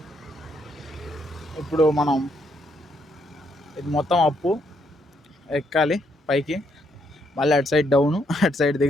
ఇప్పుడు మనం ఇది మొత్తం అప్పు ఎక్కాలి పైకి, మళ్ళీ అటు సైడ్ డౌను, అటు సైడ్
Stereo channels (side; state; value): both; normal; correlation 0.74